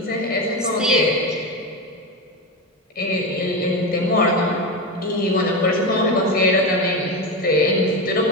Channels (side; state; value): both; normal; correlation 0.17